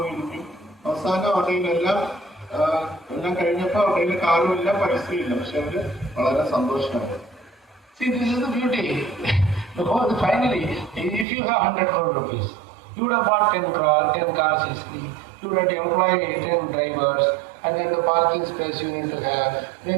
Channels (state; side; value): drops out; left; at 11.2 s